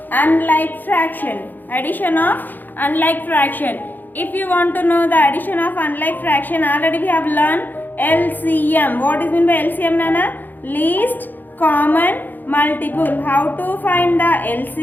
unlike fraction. Addition of unlike fraction. If you want to know the addition of unlike fraction, already we have learned LCM. What is meant by LCM, Nana? Least common multiple. How to find the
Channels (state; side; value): late; right; 0.088 ms